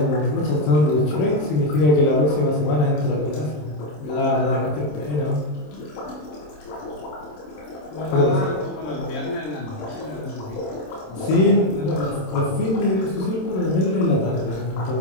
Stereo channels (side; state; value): right; late; 27 ms